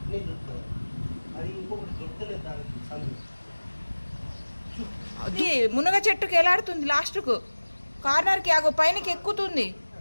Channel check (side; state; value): both; inverted; correlation -1.00